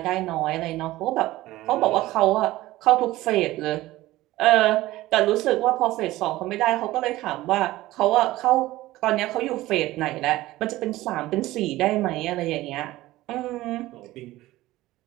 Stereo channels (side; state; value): left; quieter; 17.1 dB